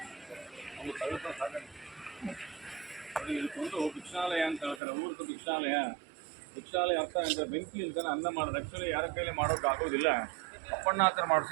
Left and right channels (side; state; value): left; drops out; at 4.8 s